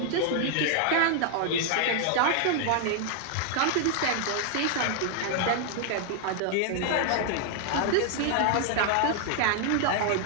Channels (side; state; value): both; different; correlation 0.00